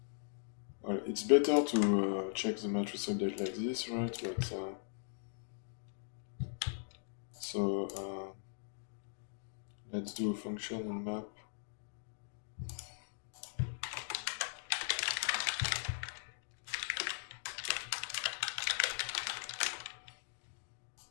well, it's better to check the matrix update like this, right? But so let's do a function in map.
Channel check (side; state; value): right; silent; digital silence